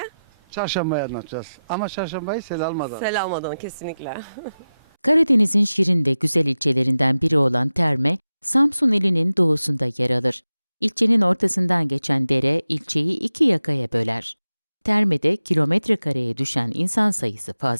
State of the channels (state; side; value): inverted; both; correlation -0.94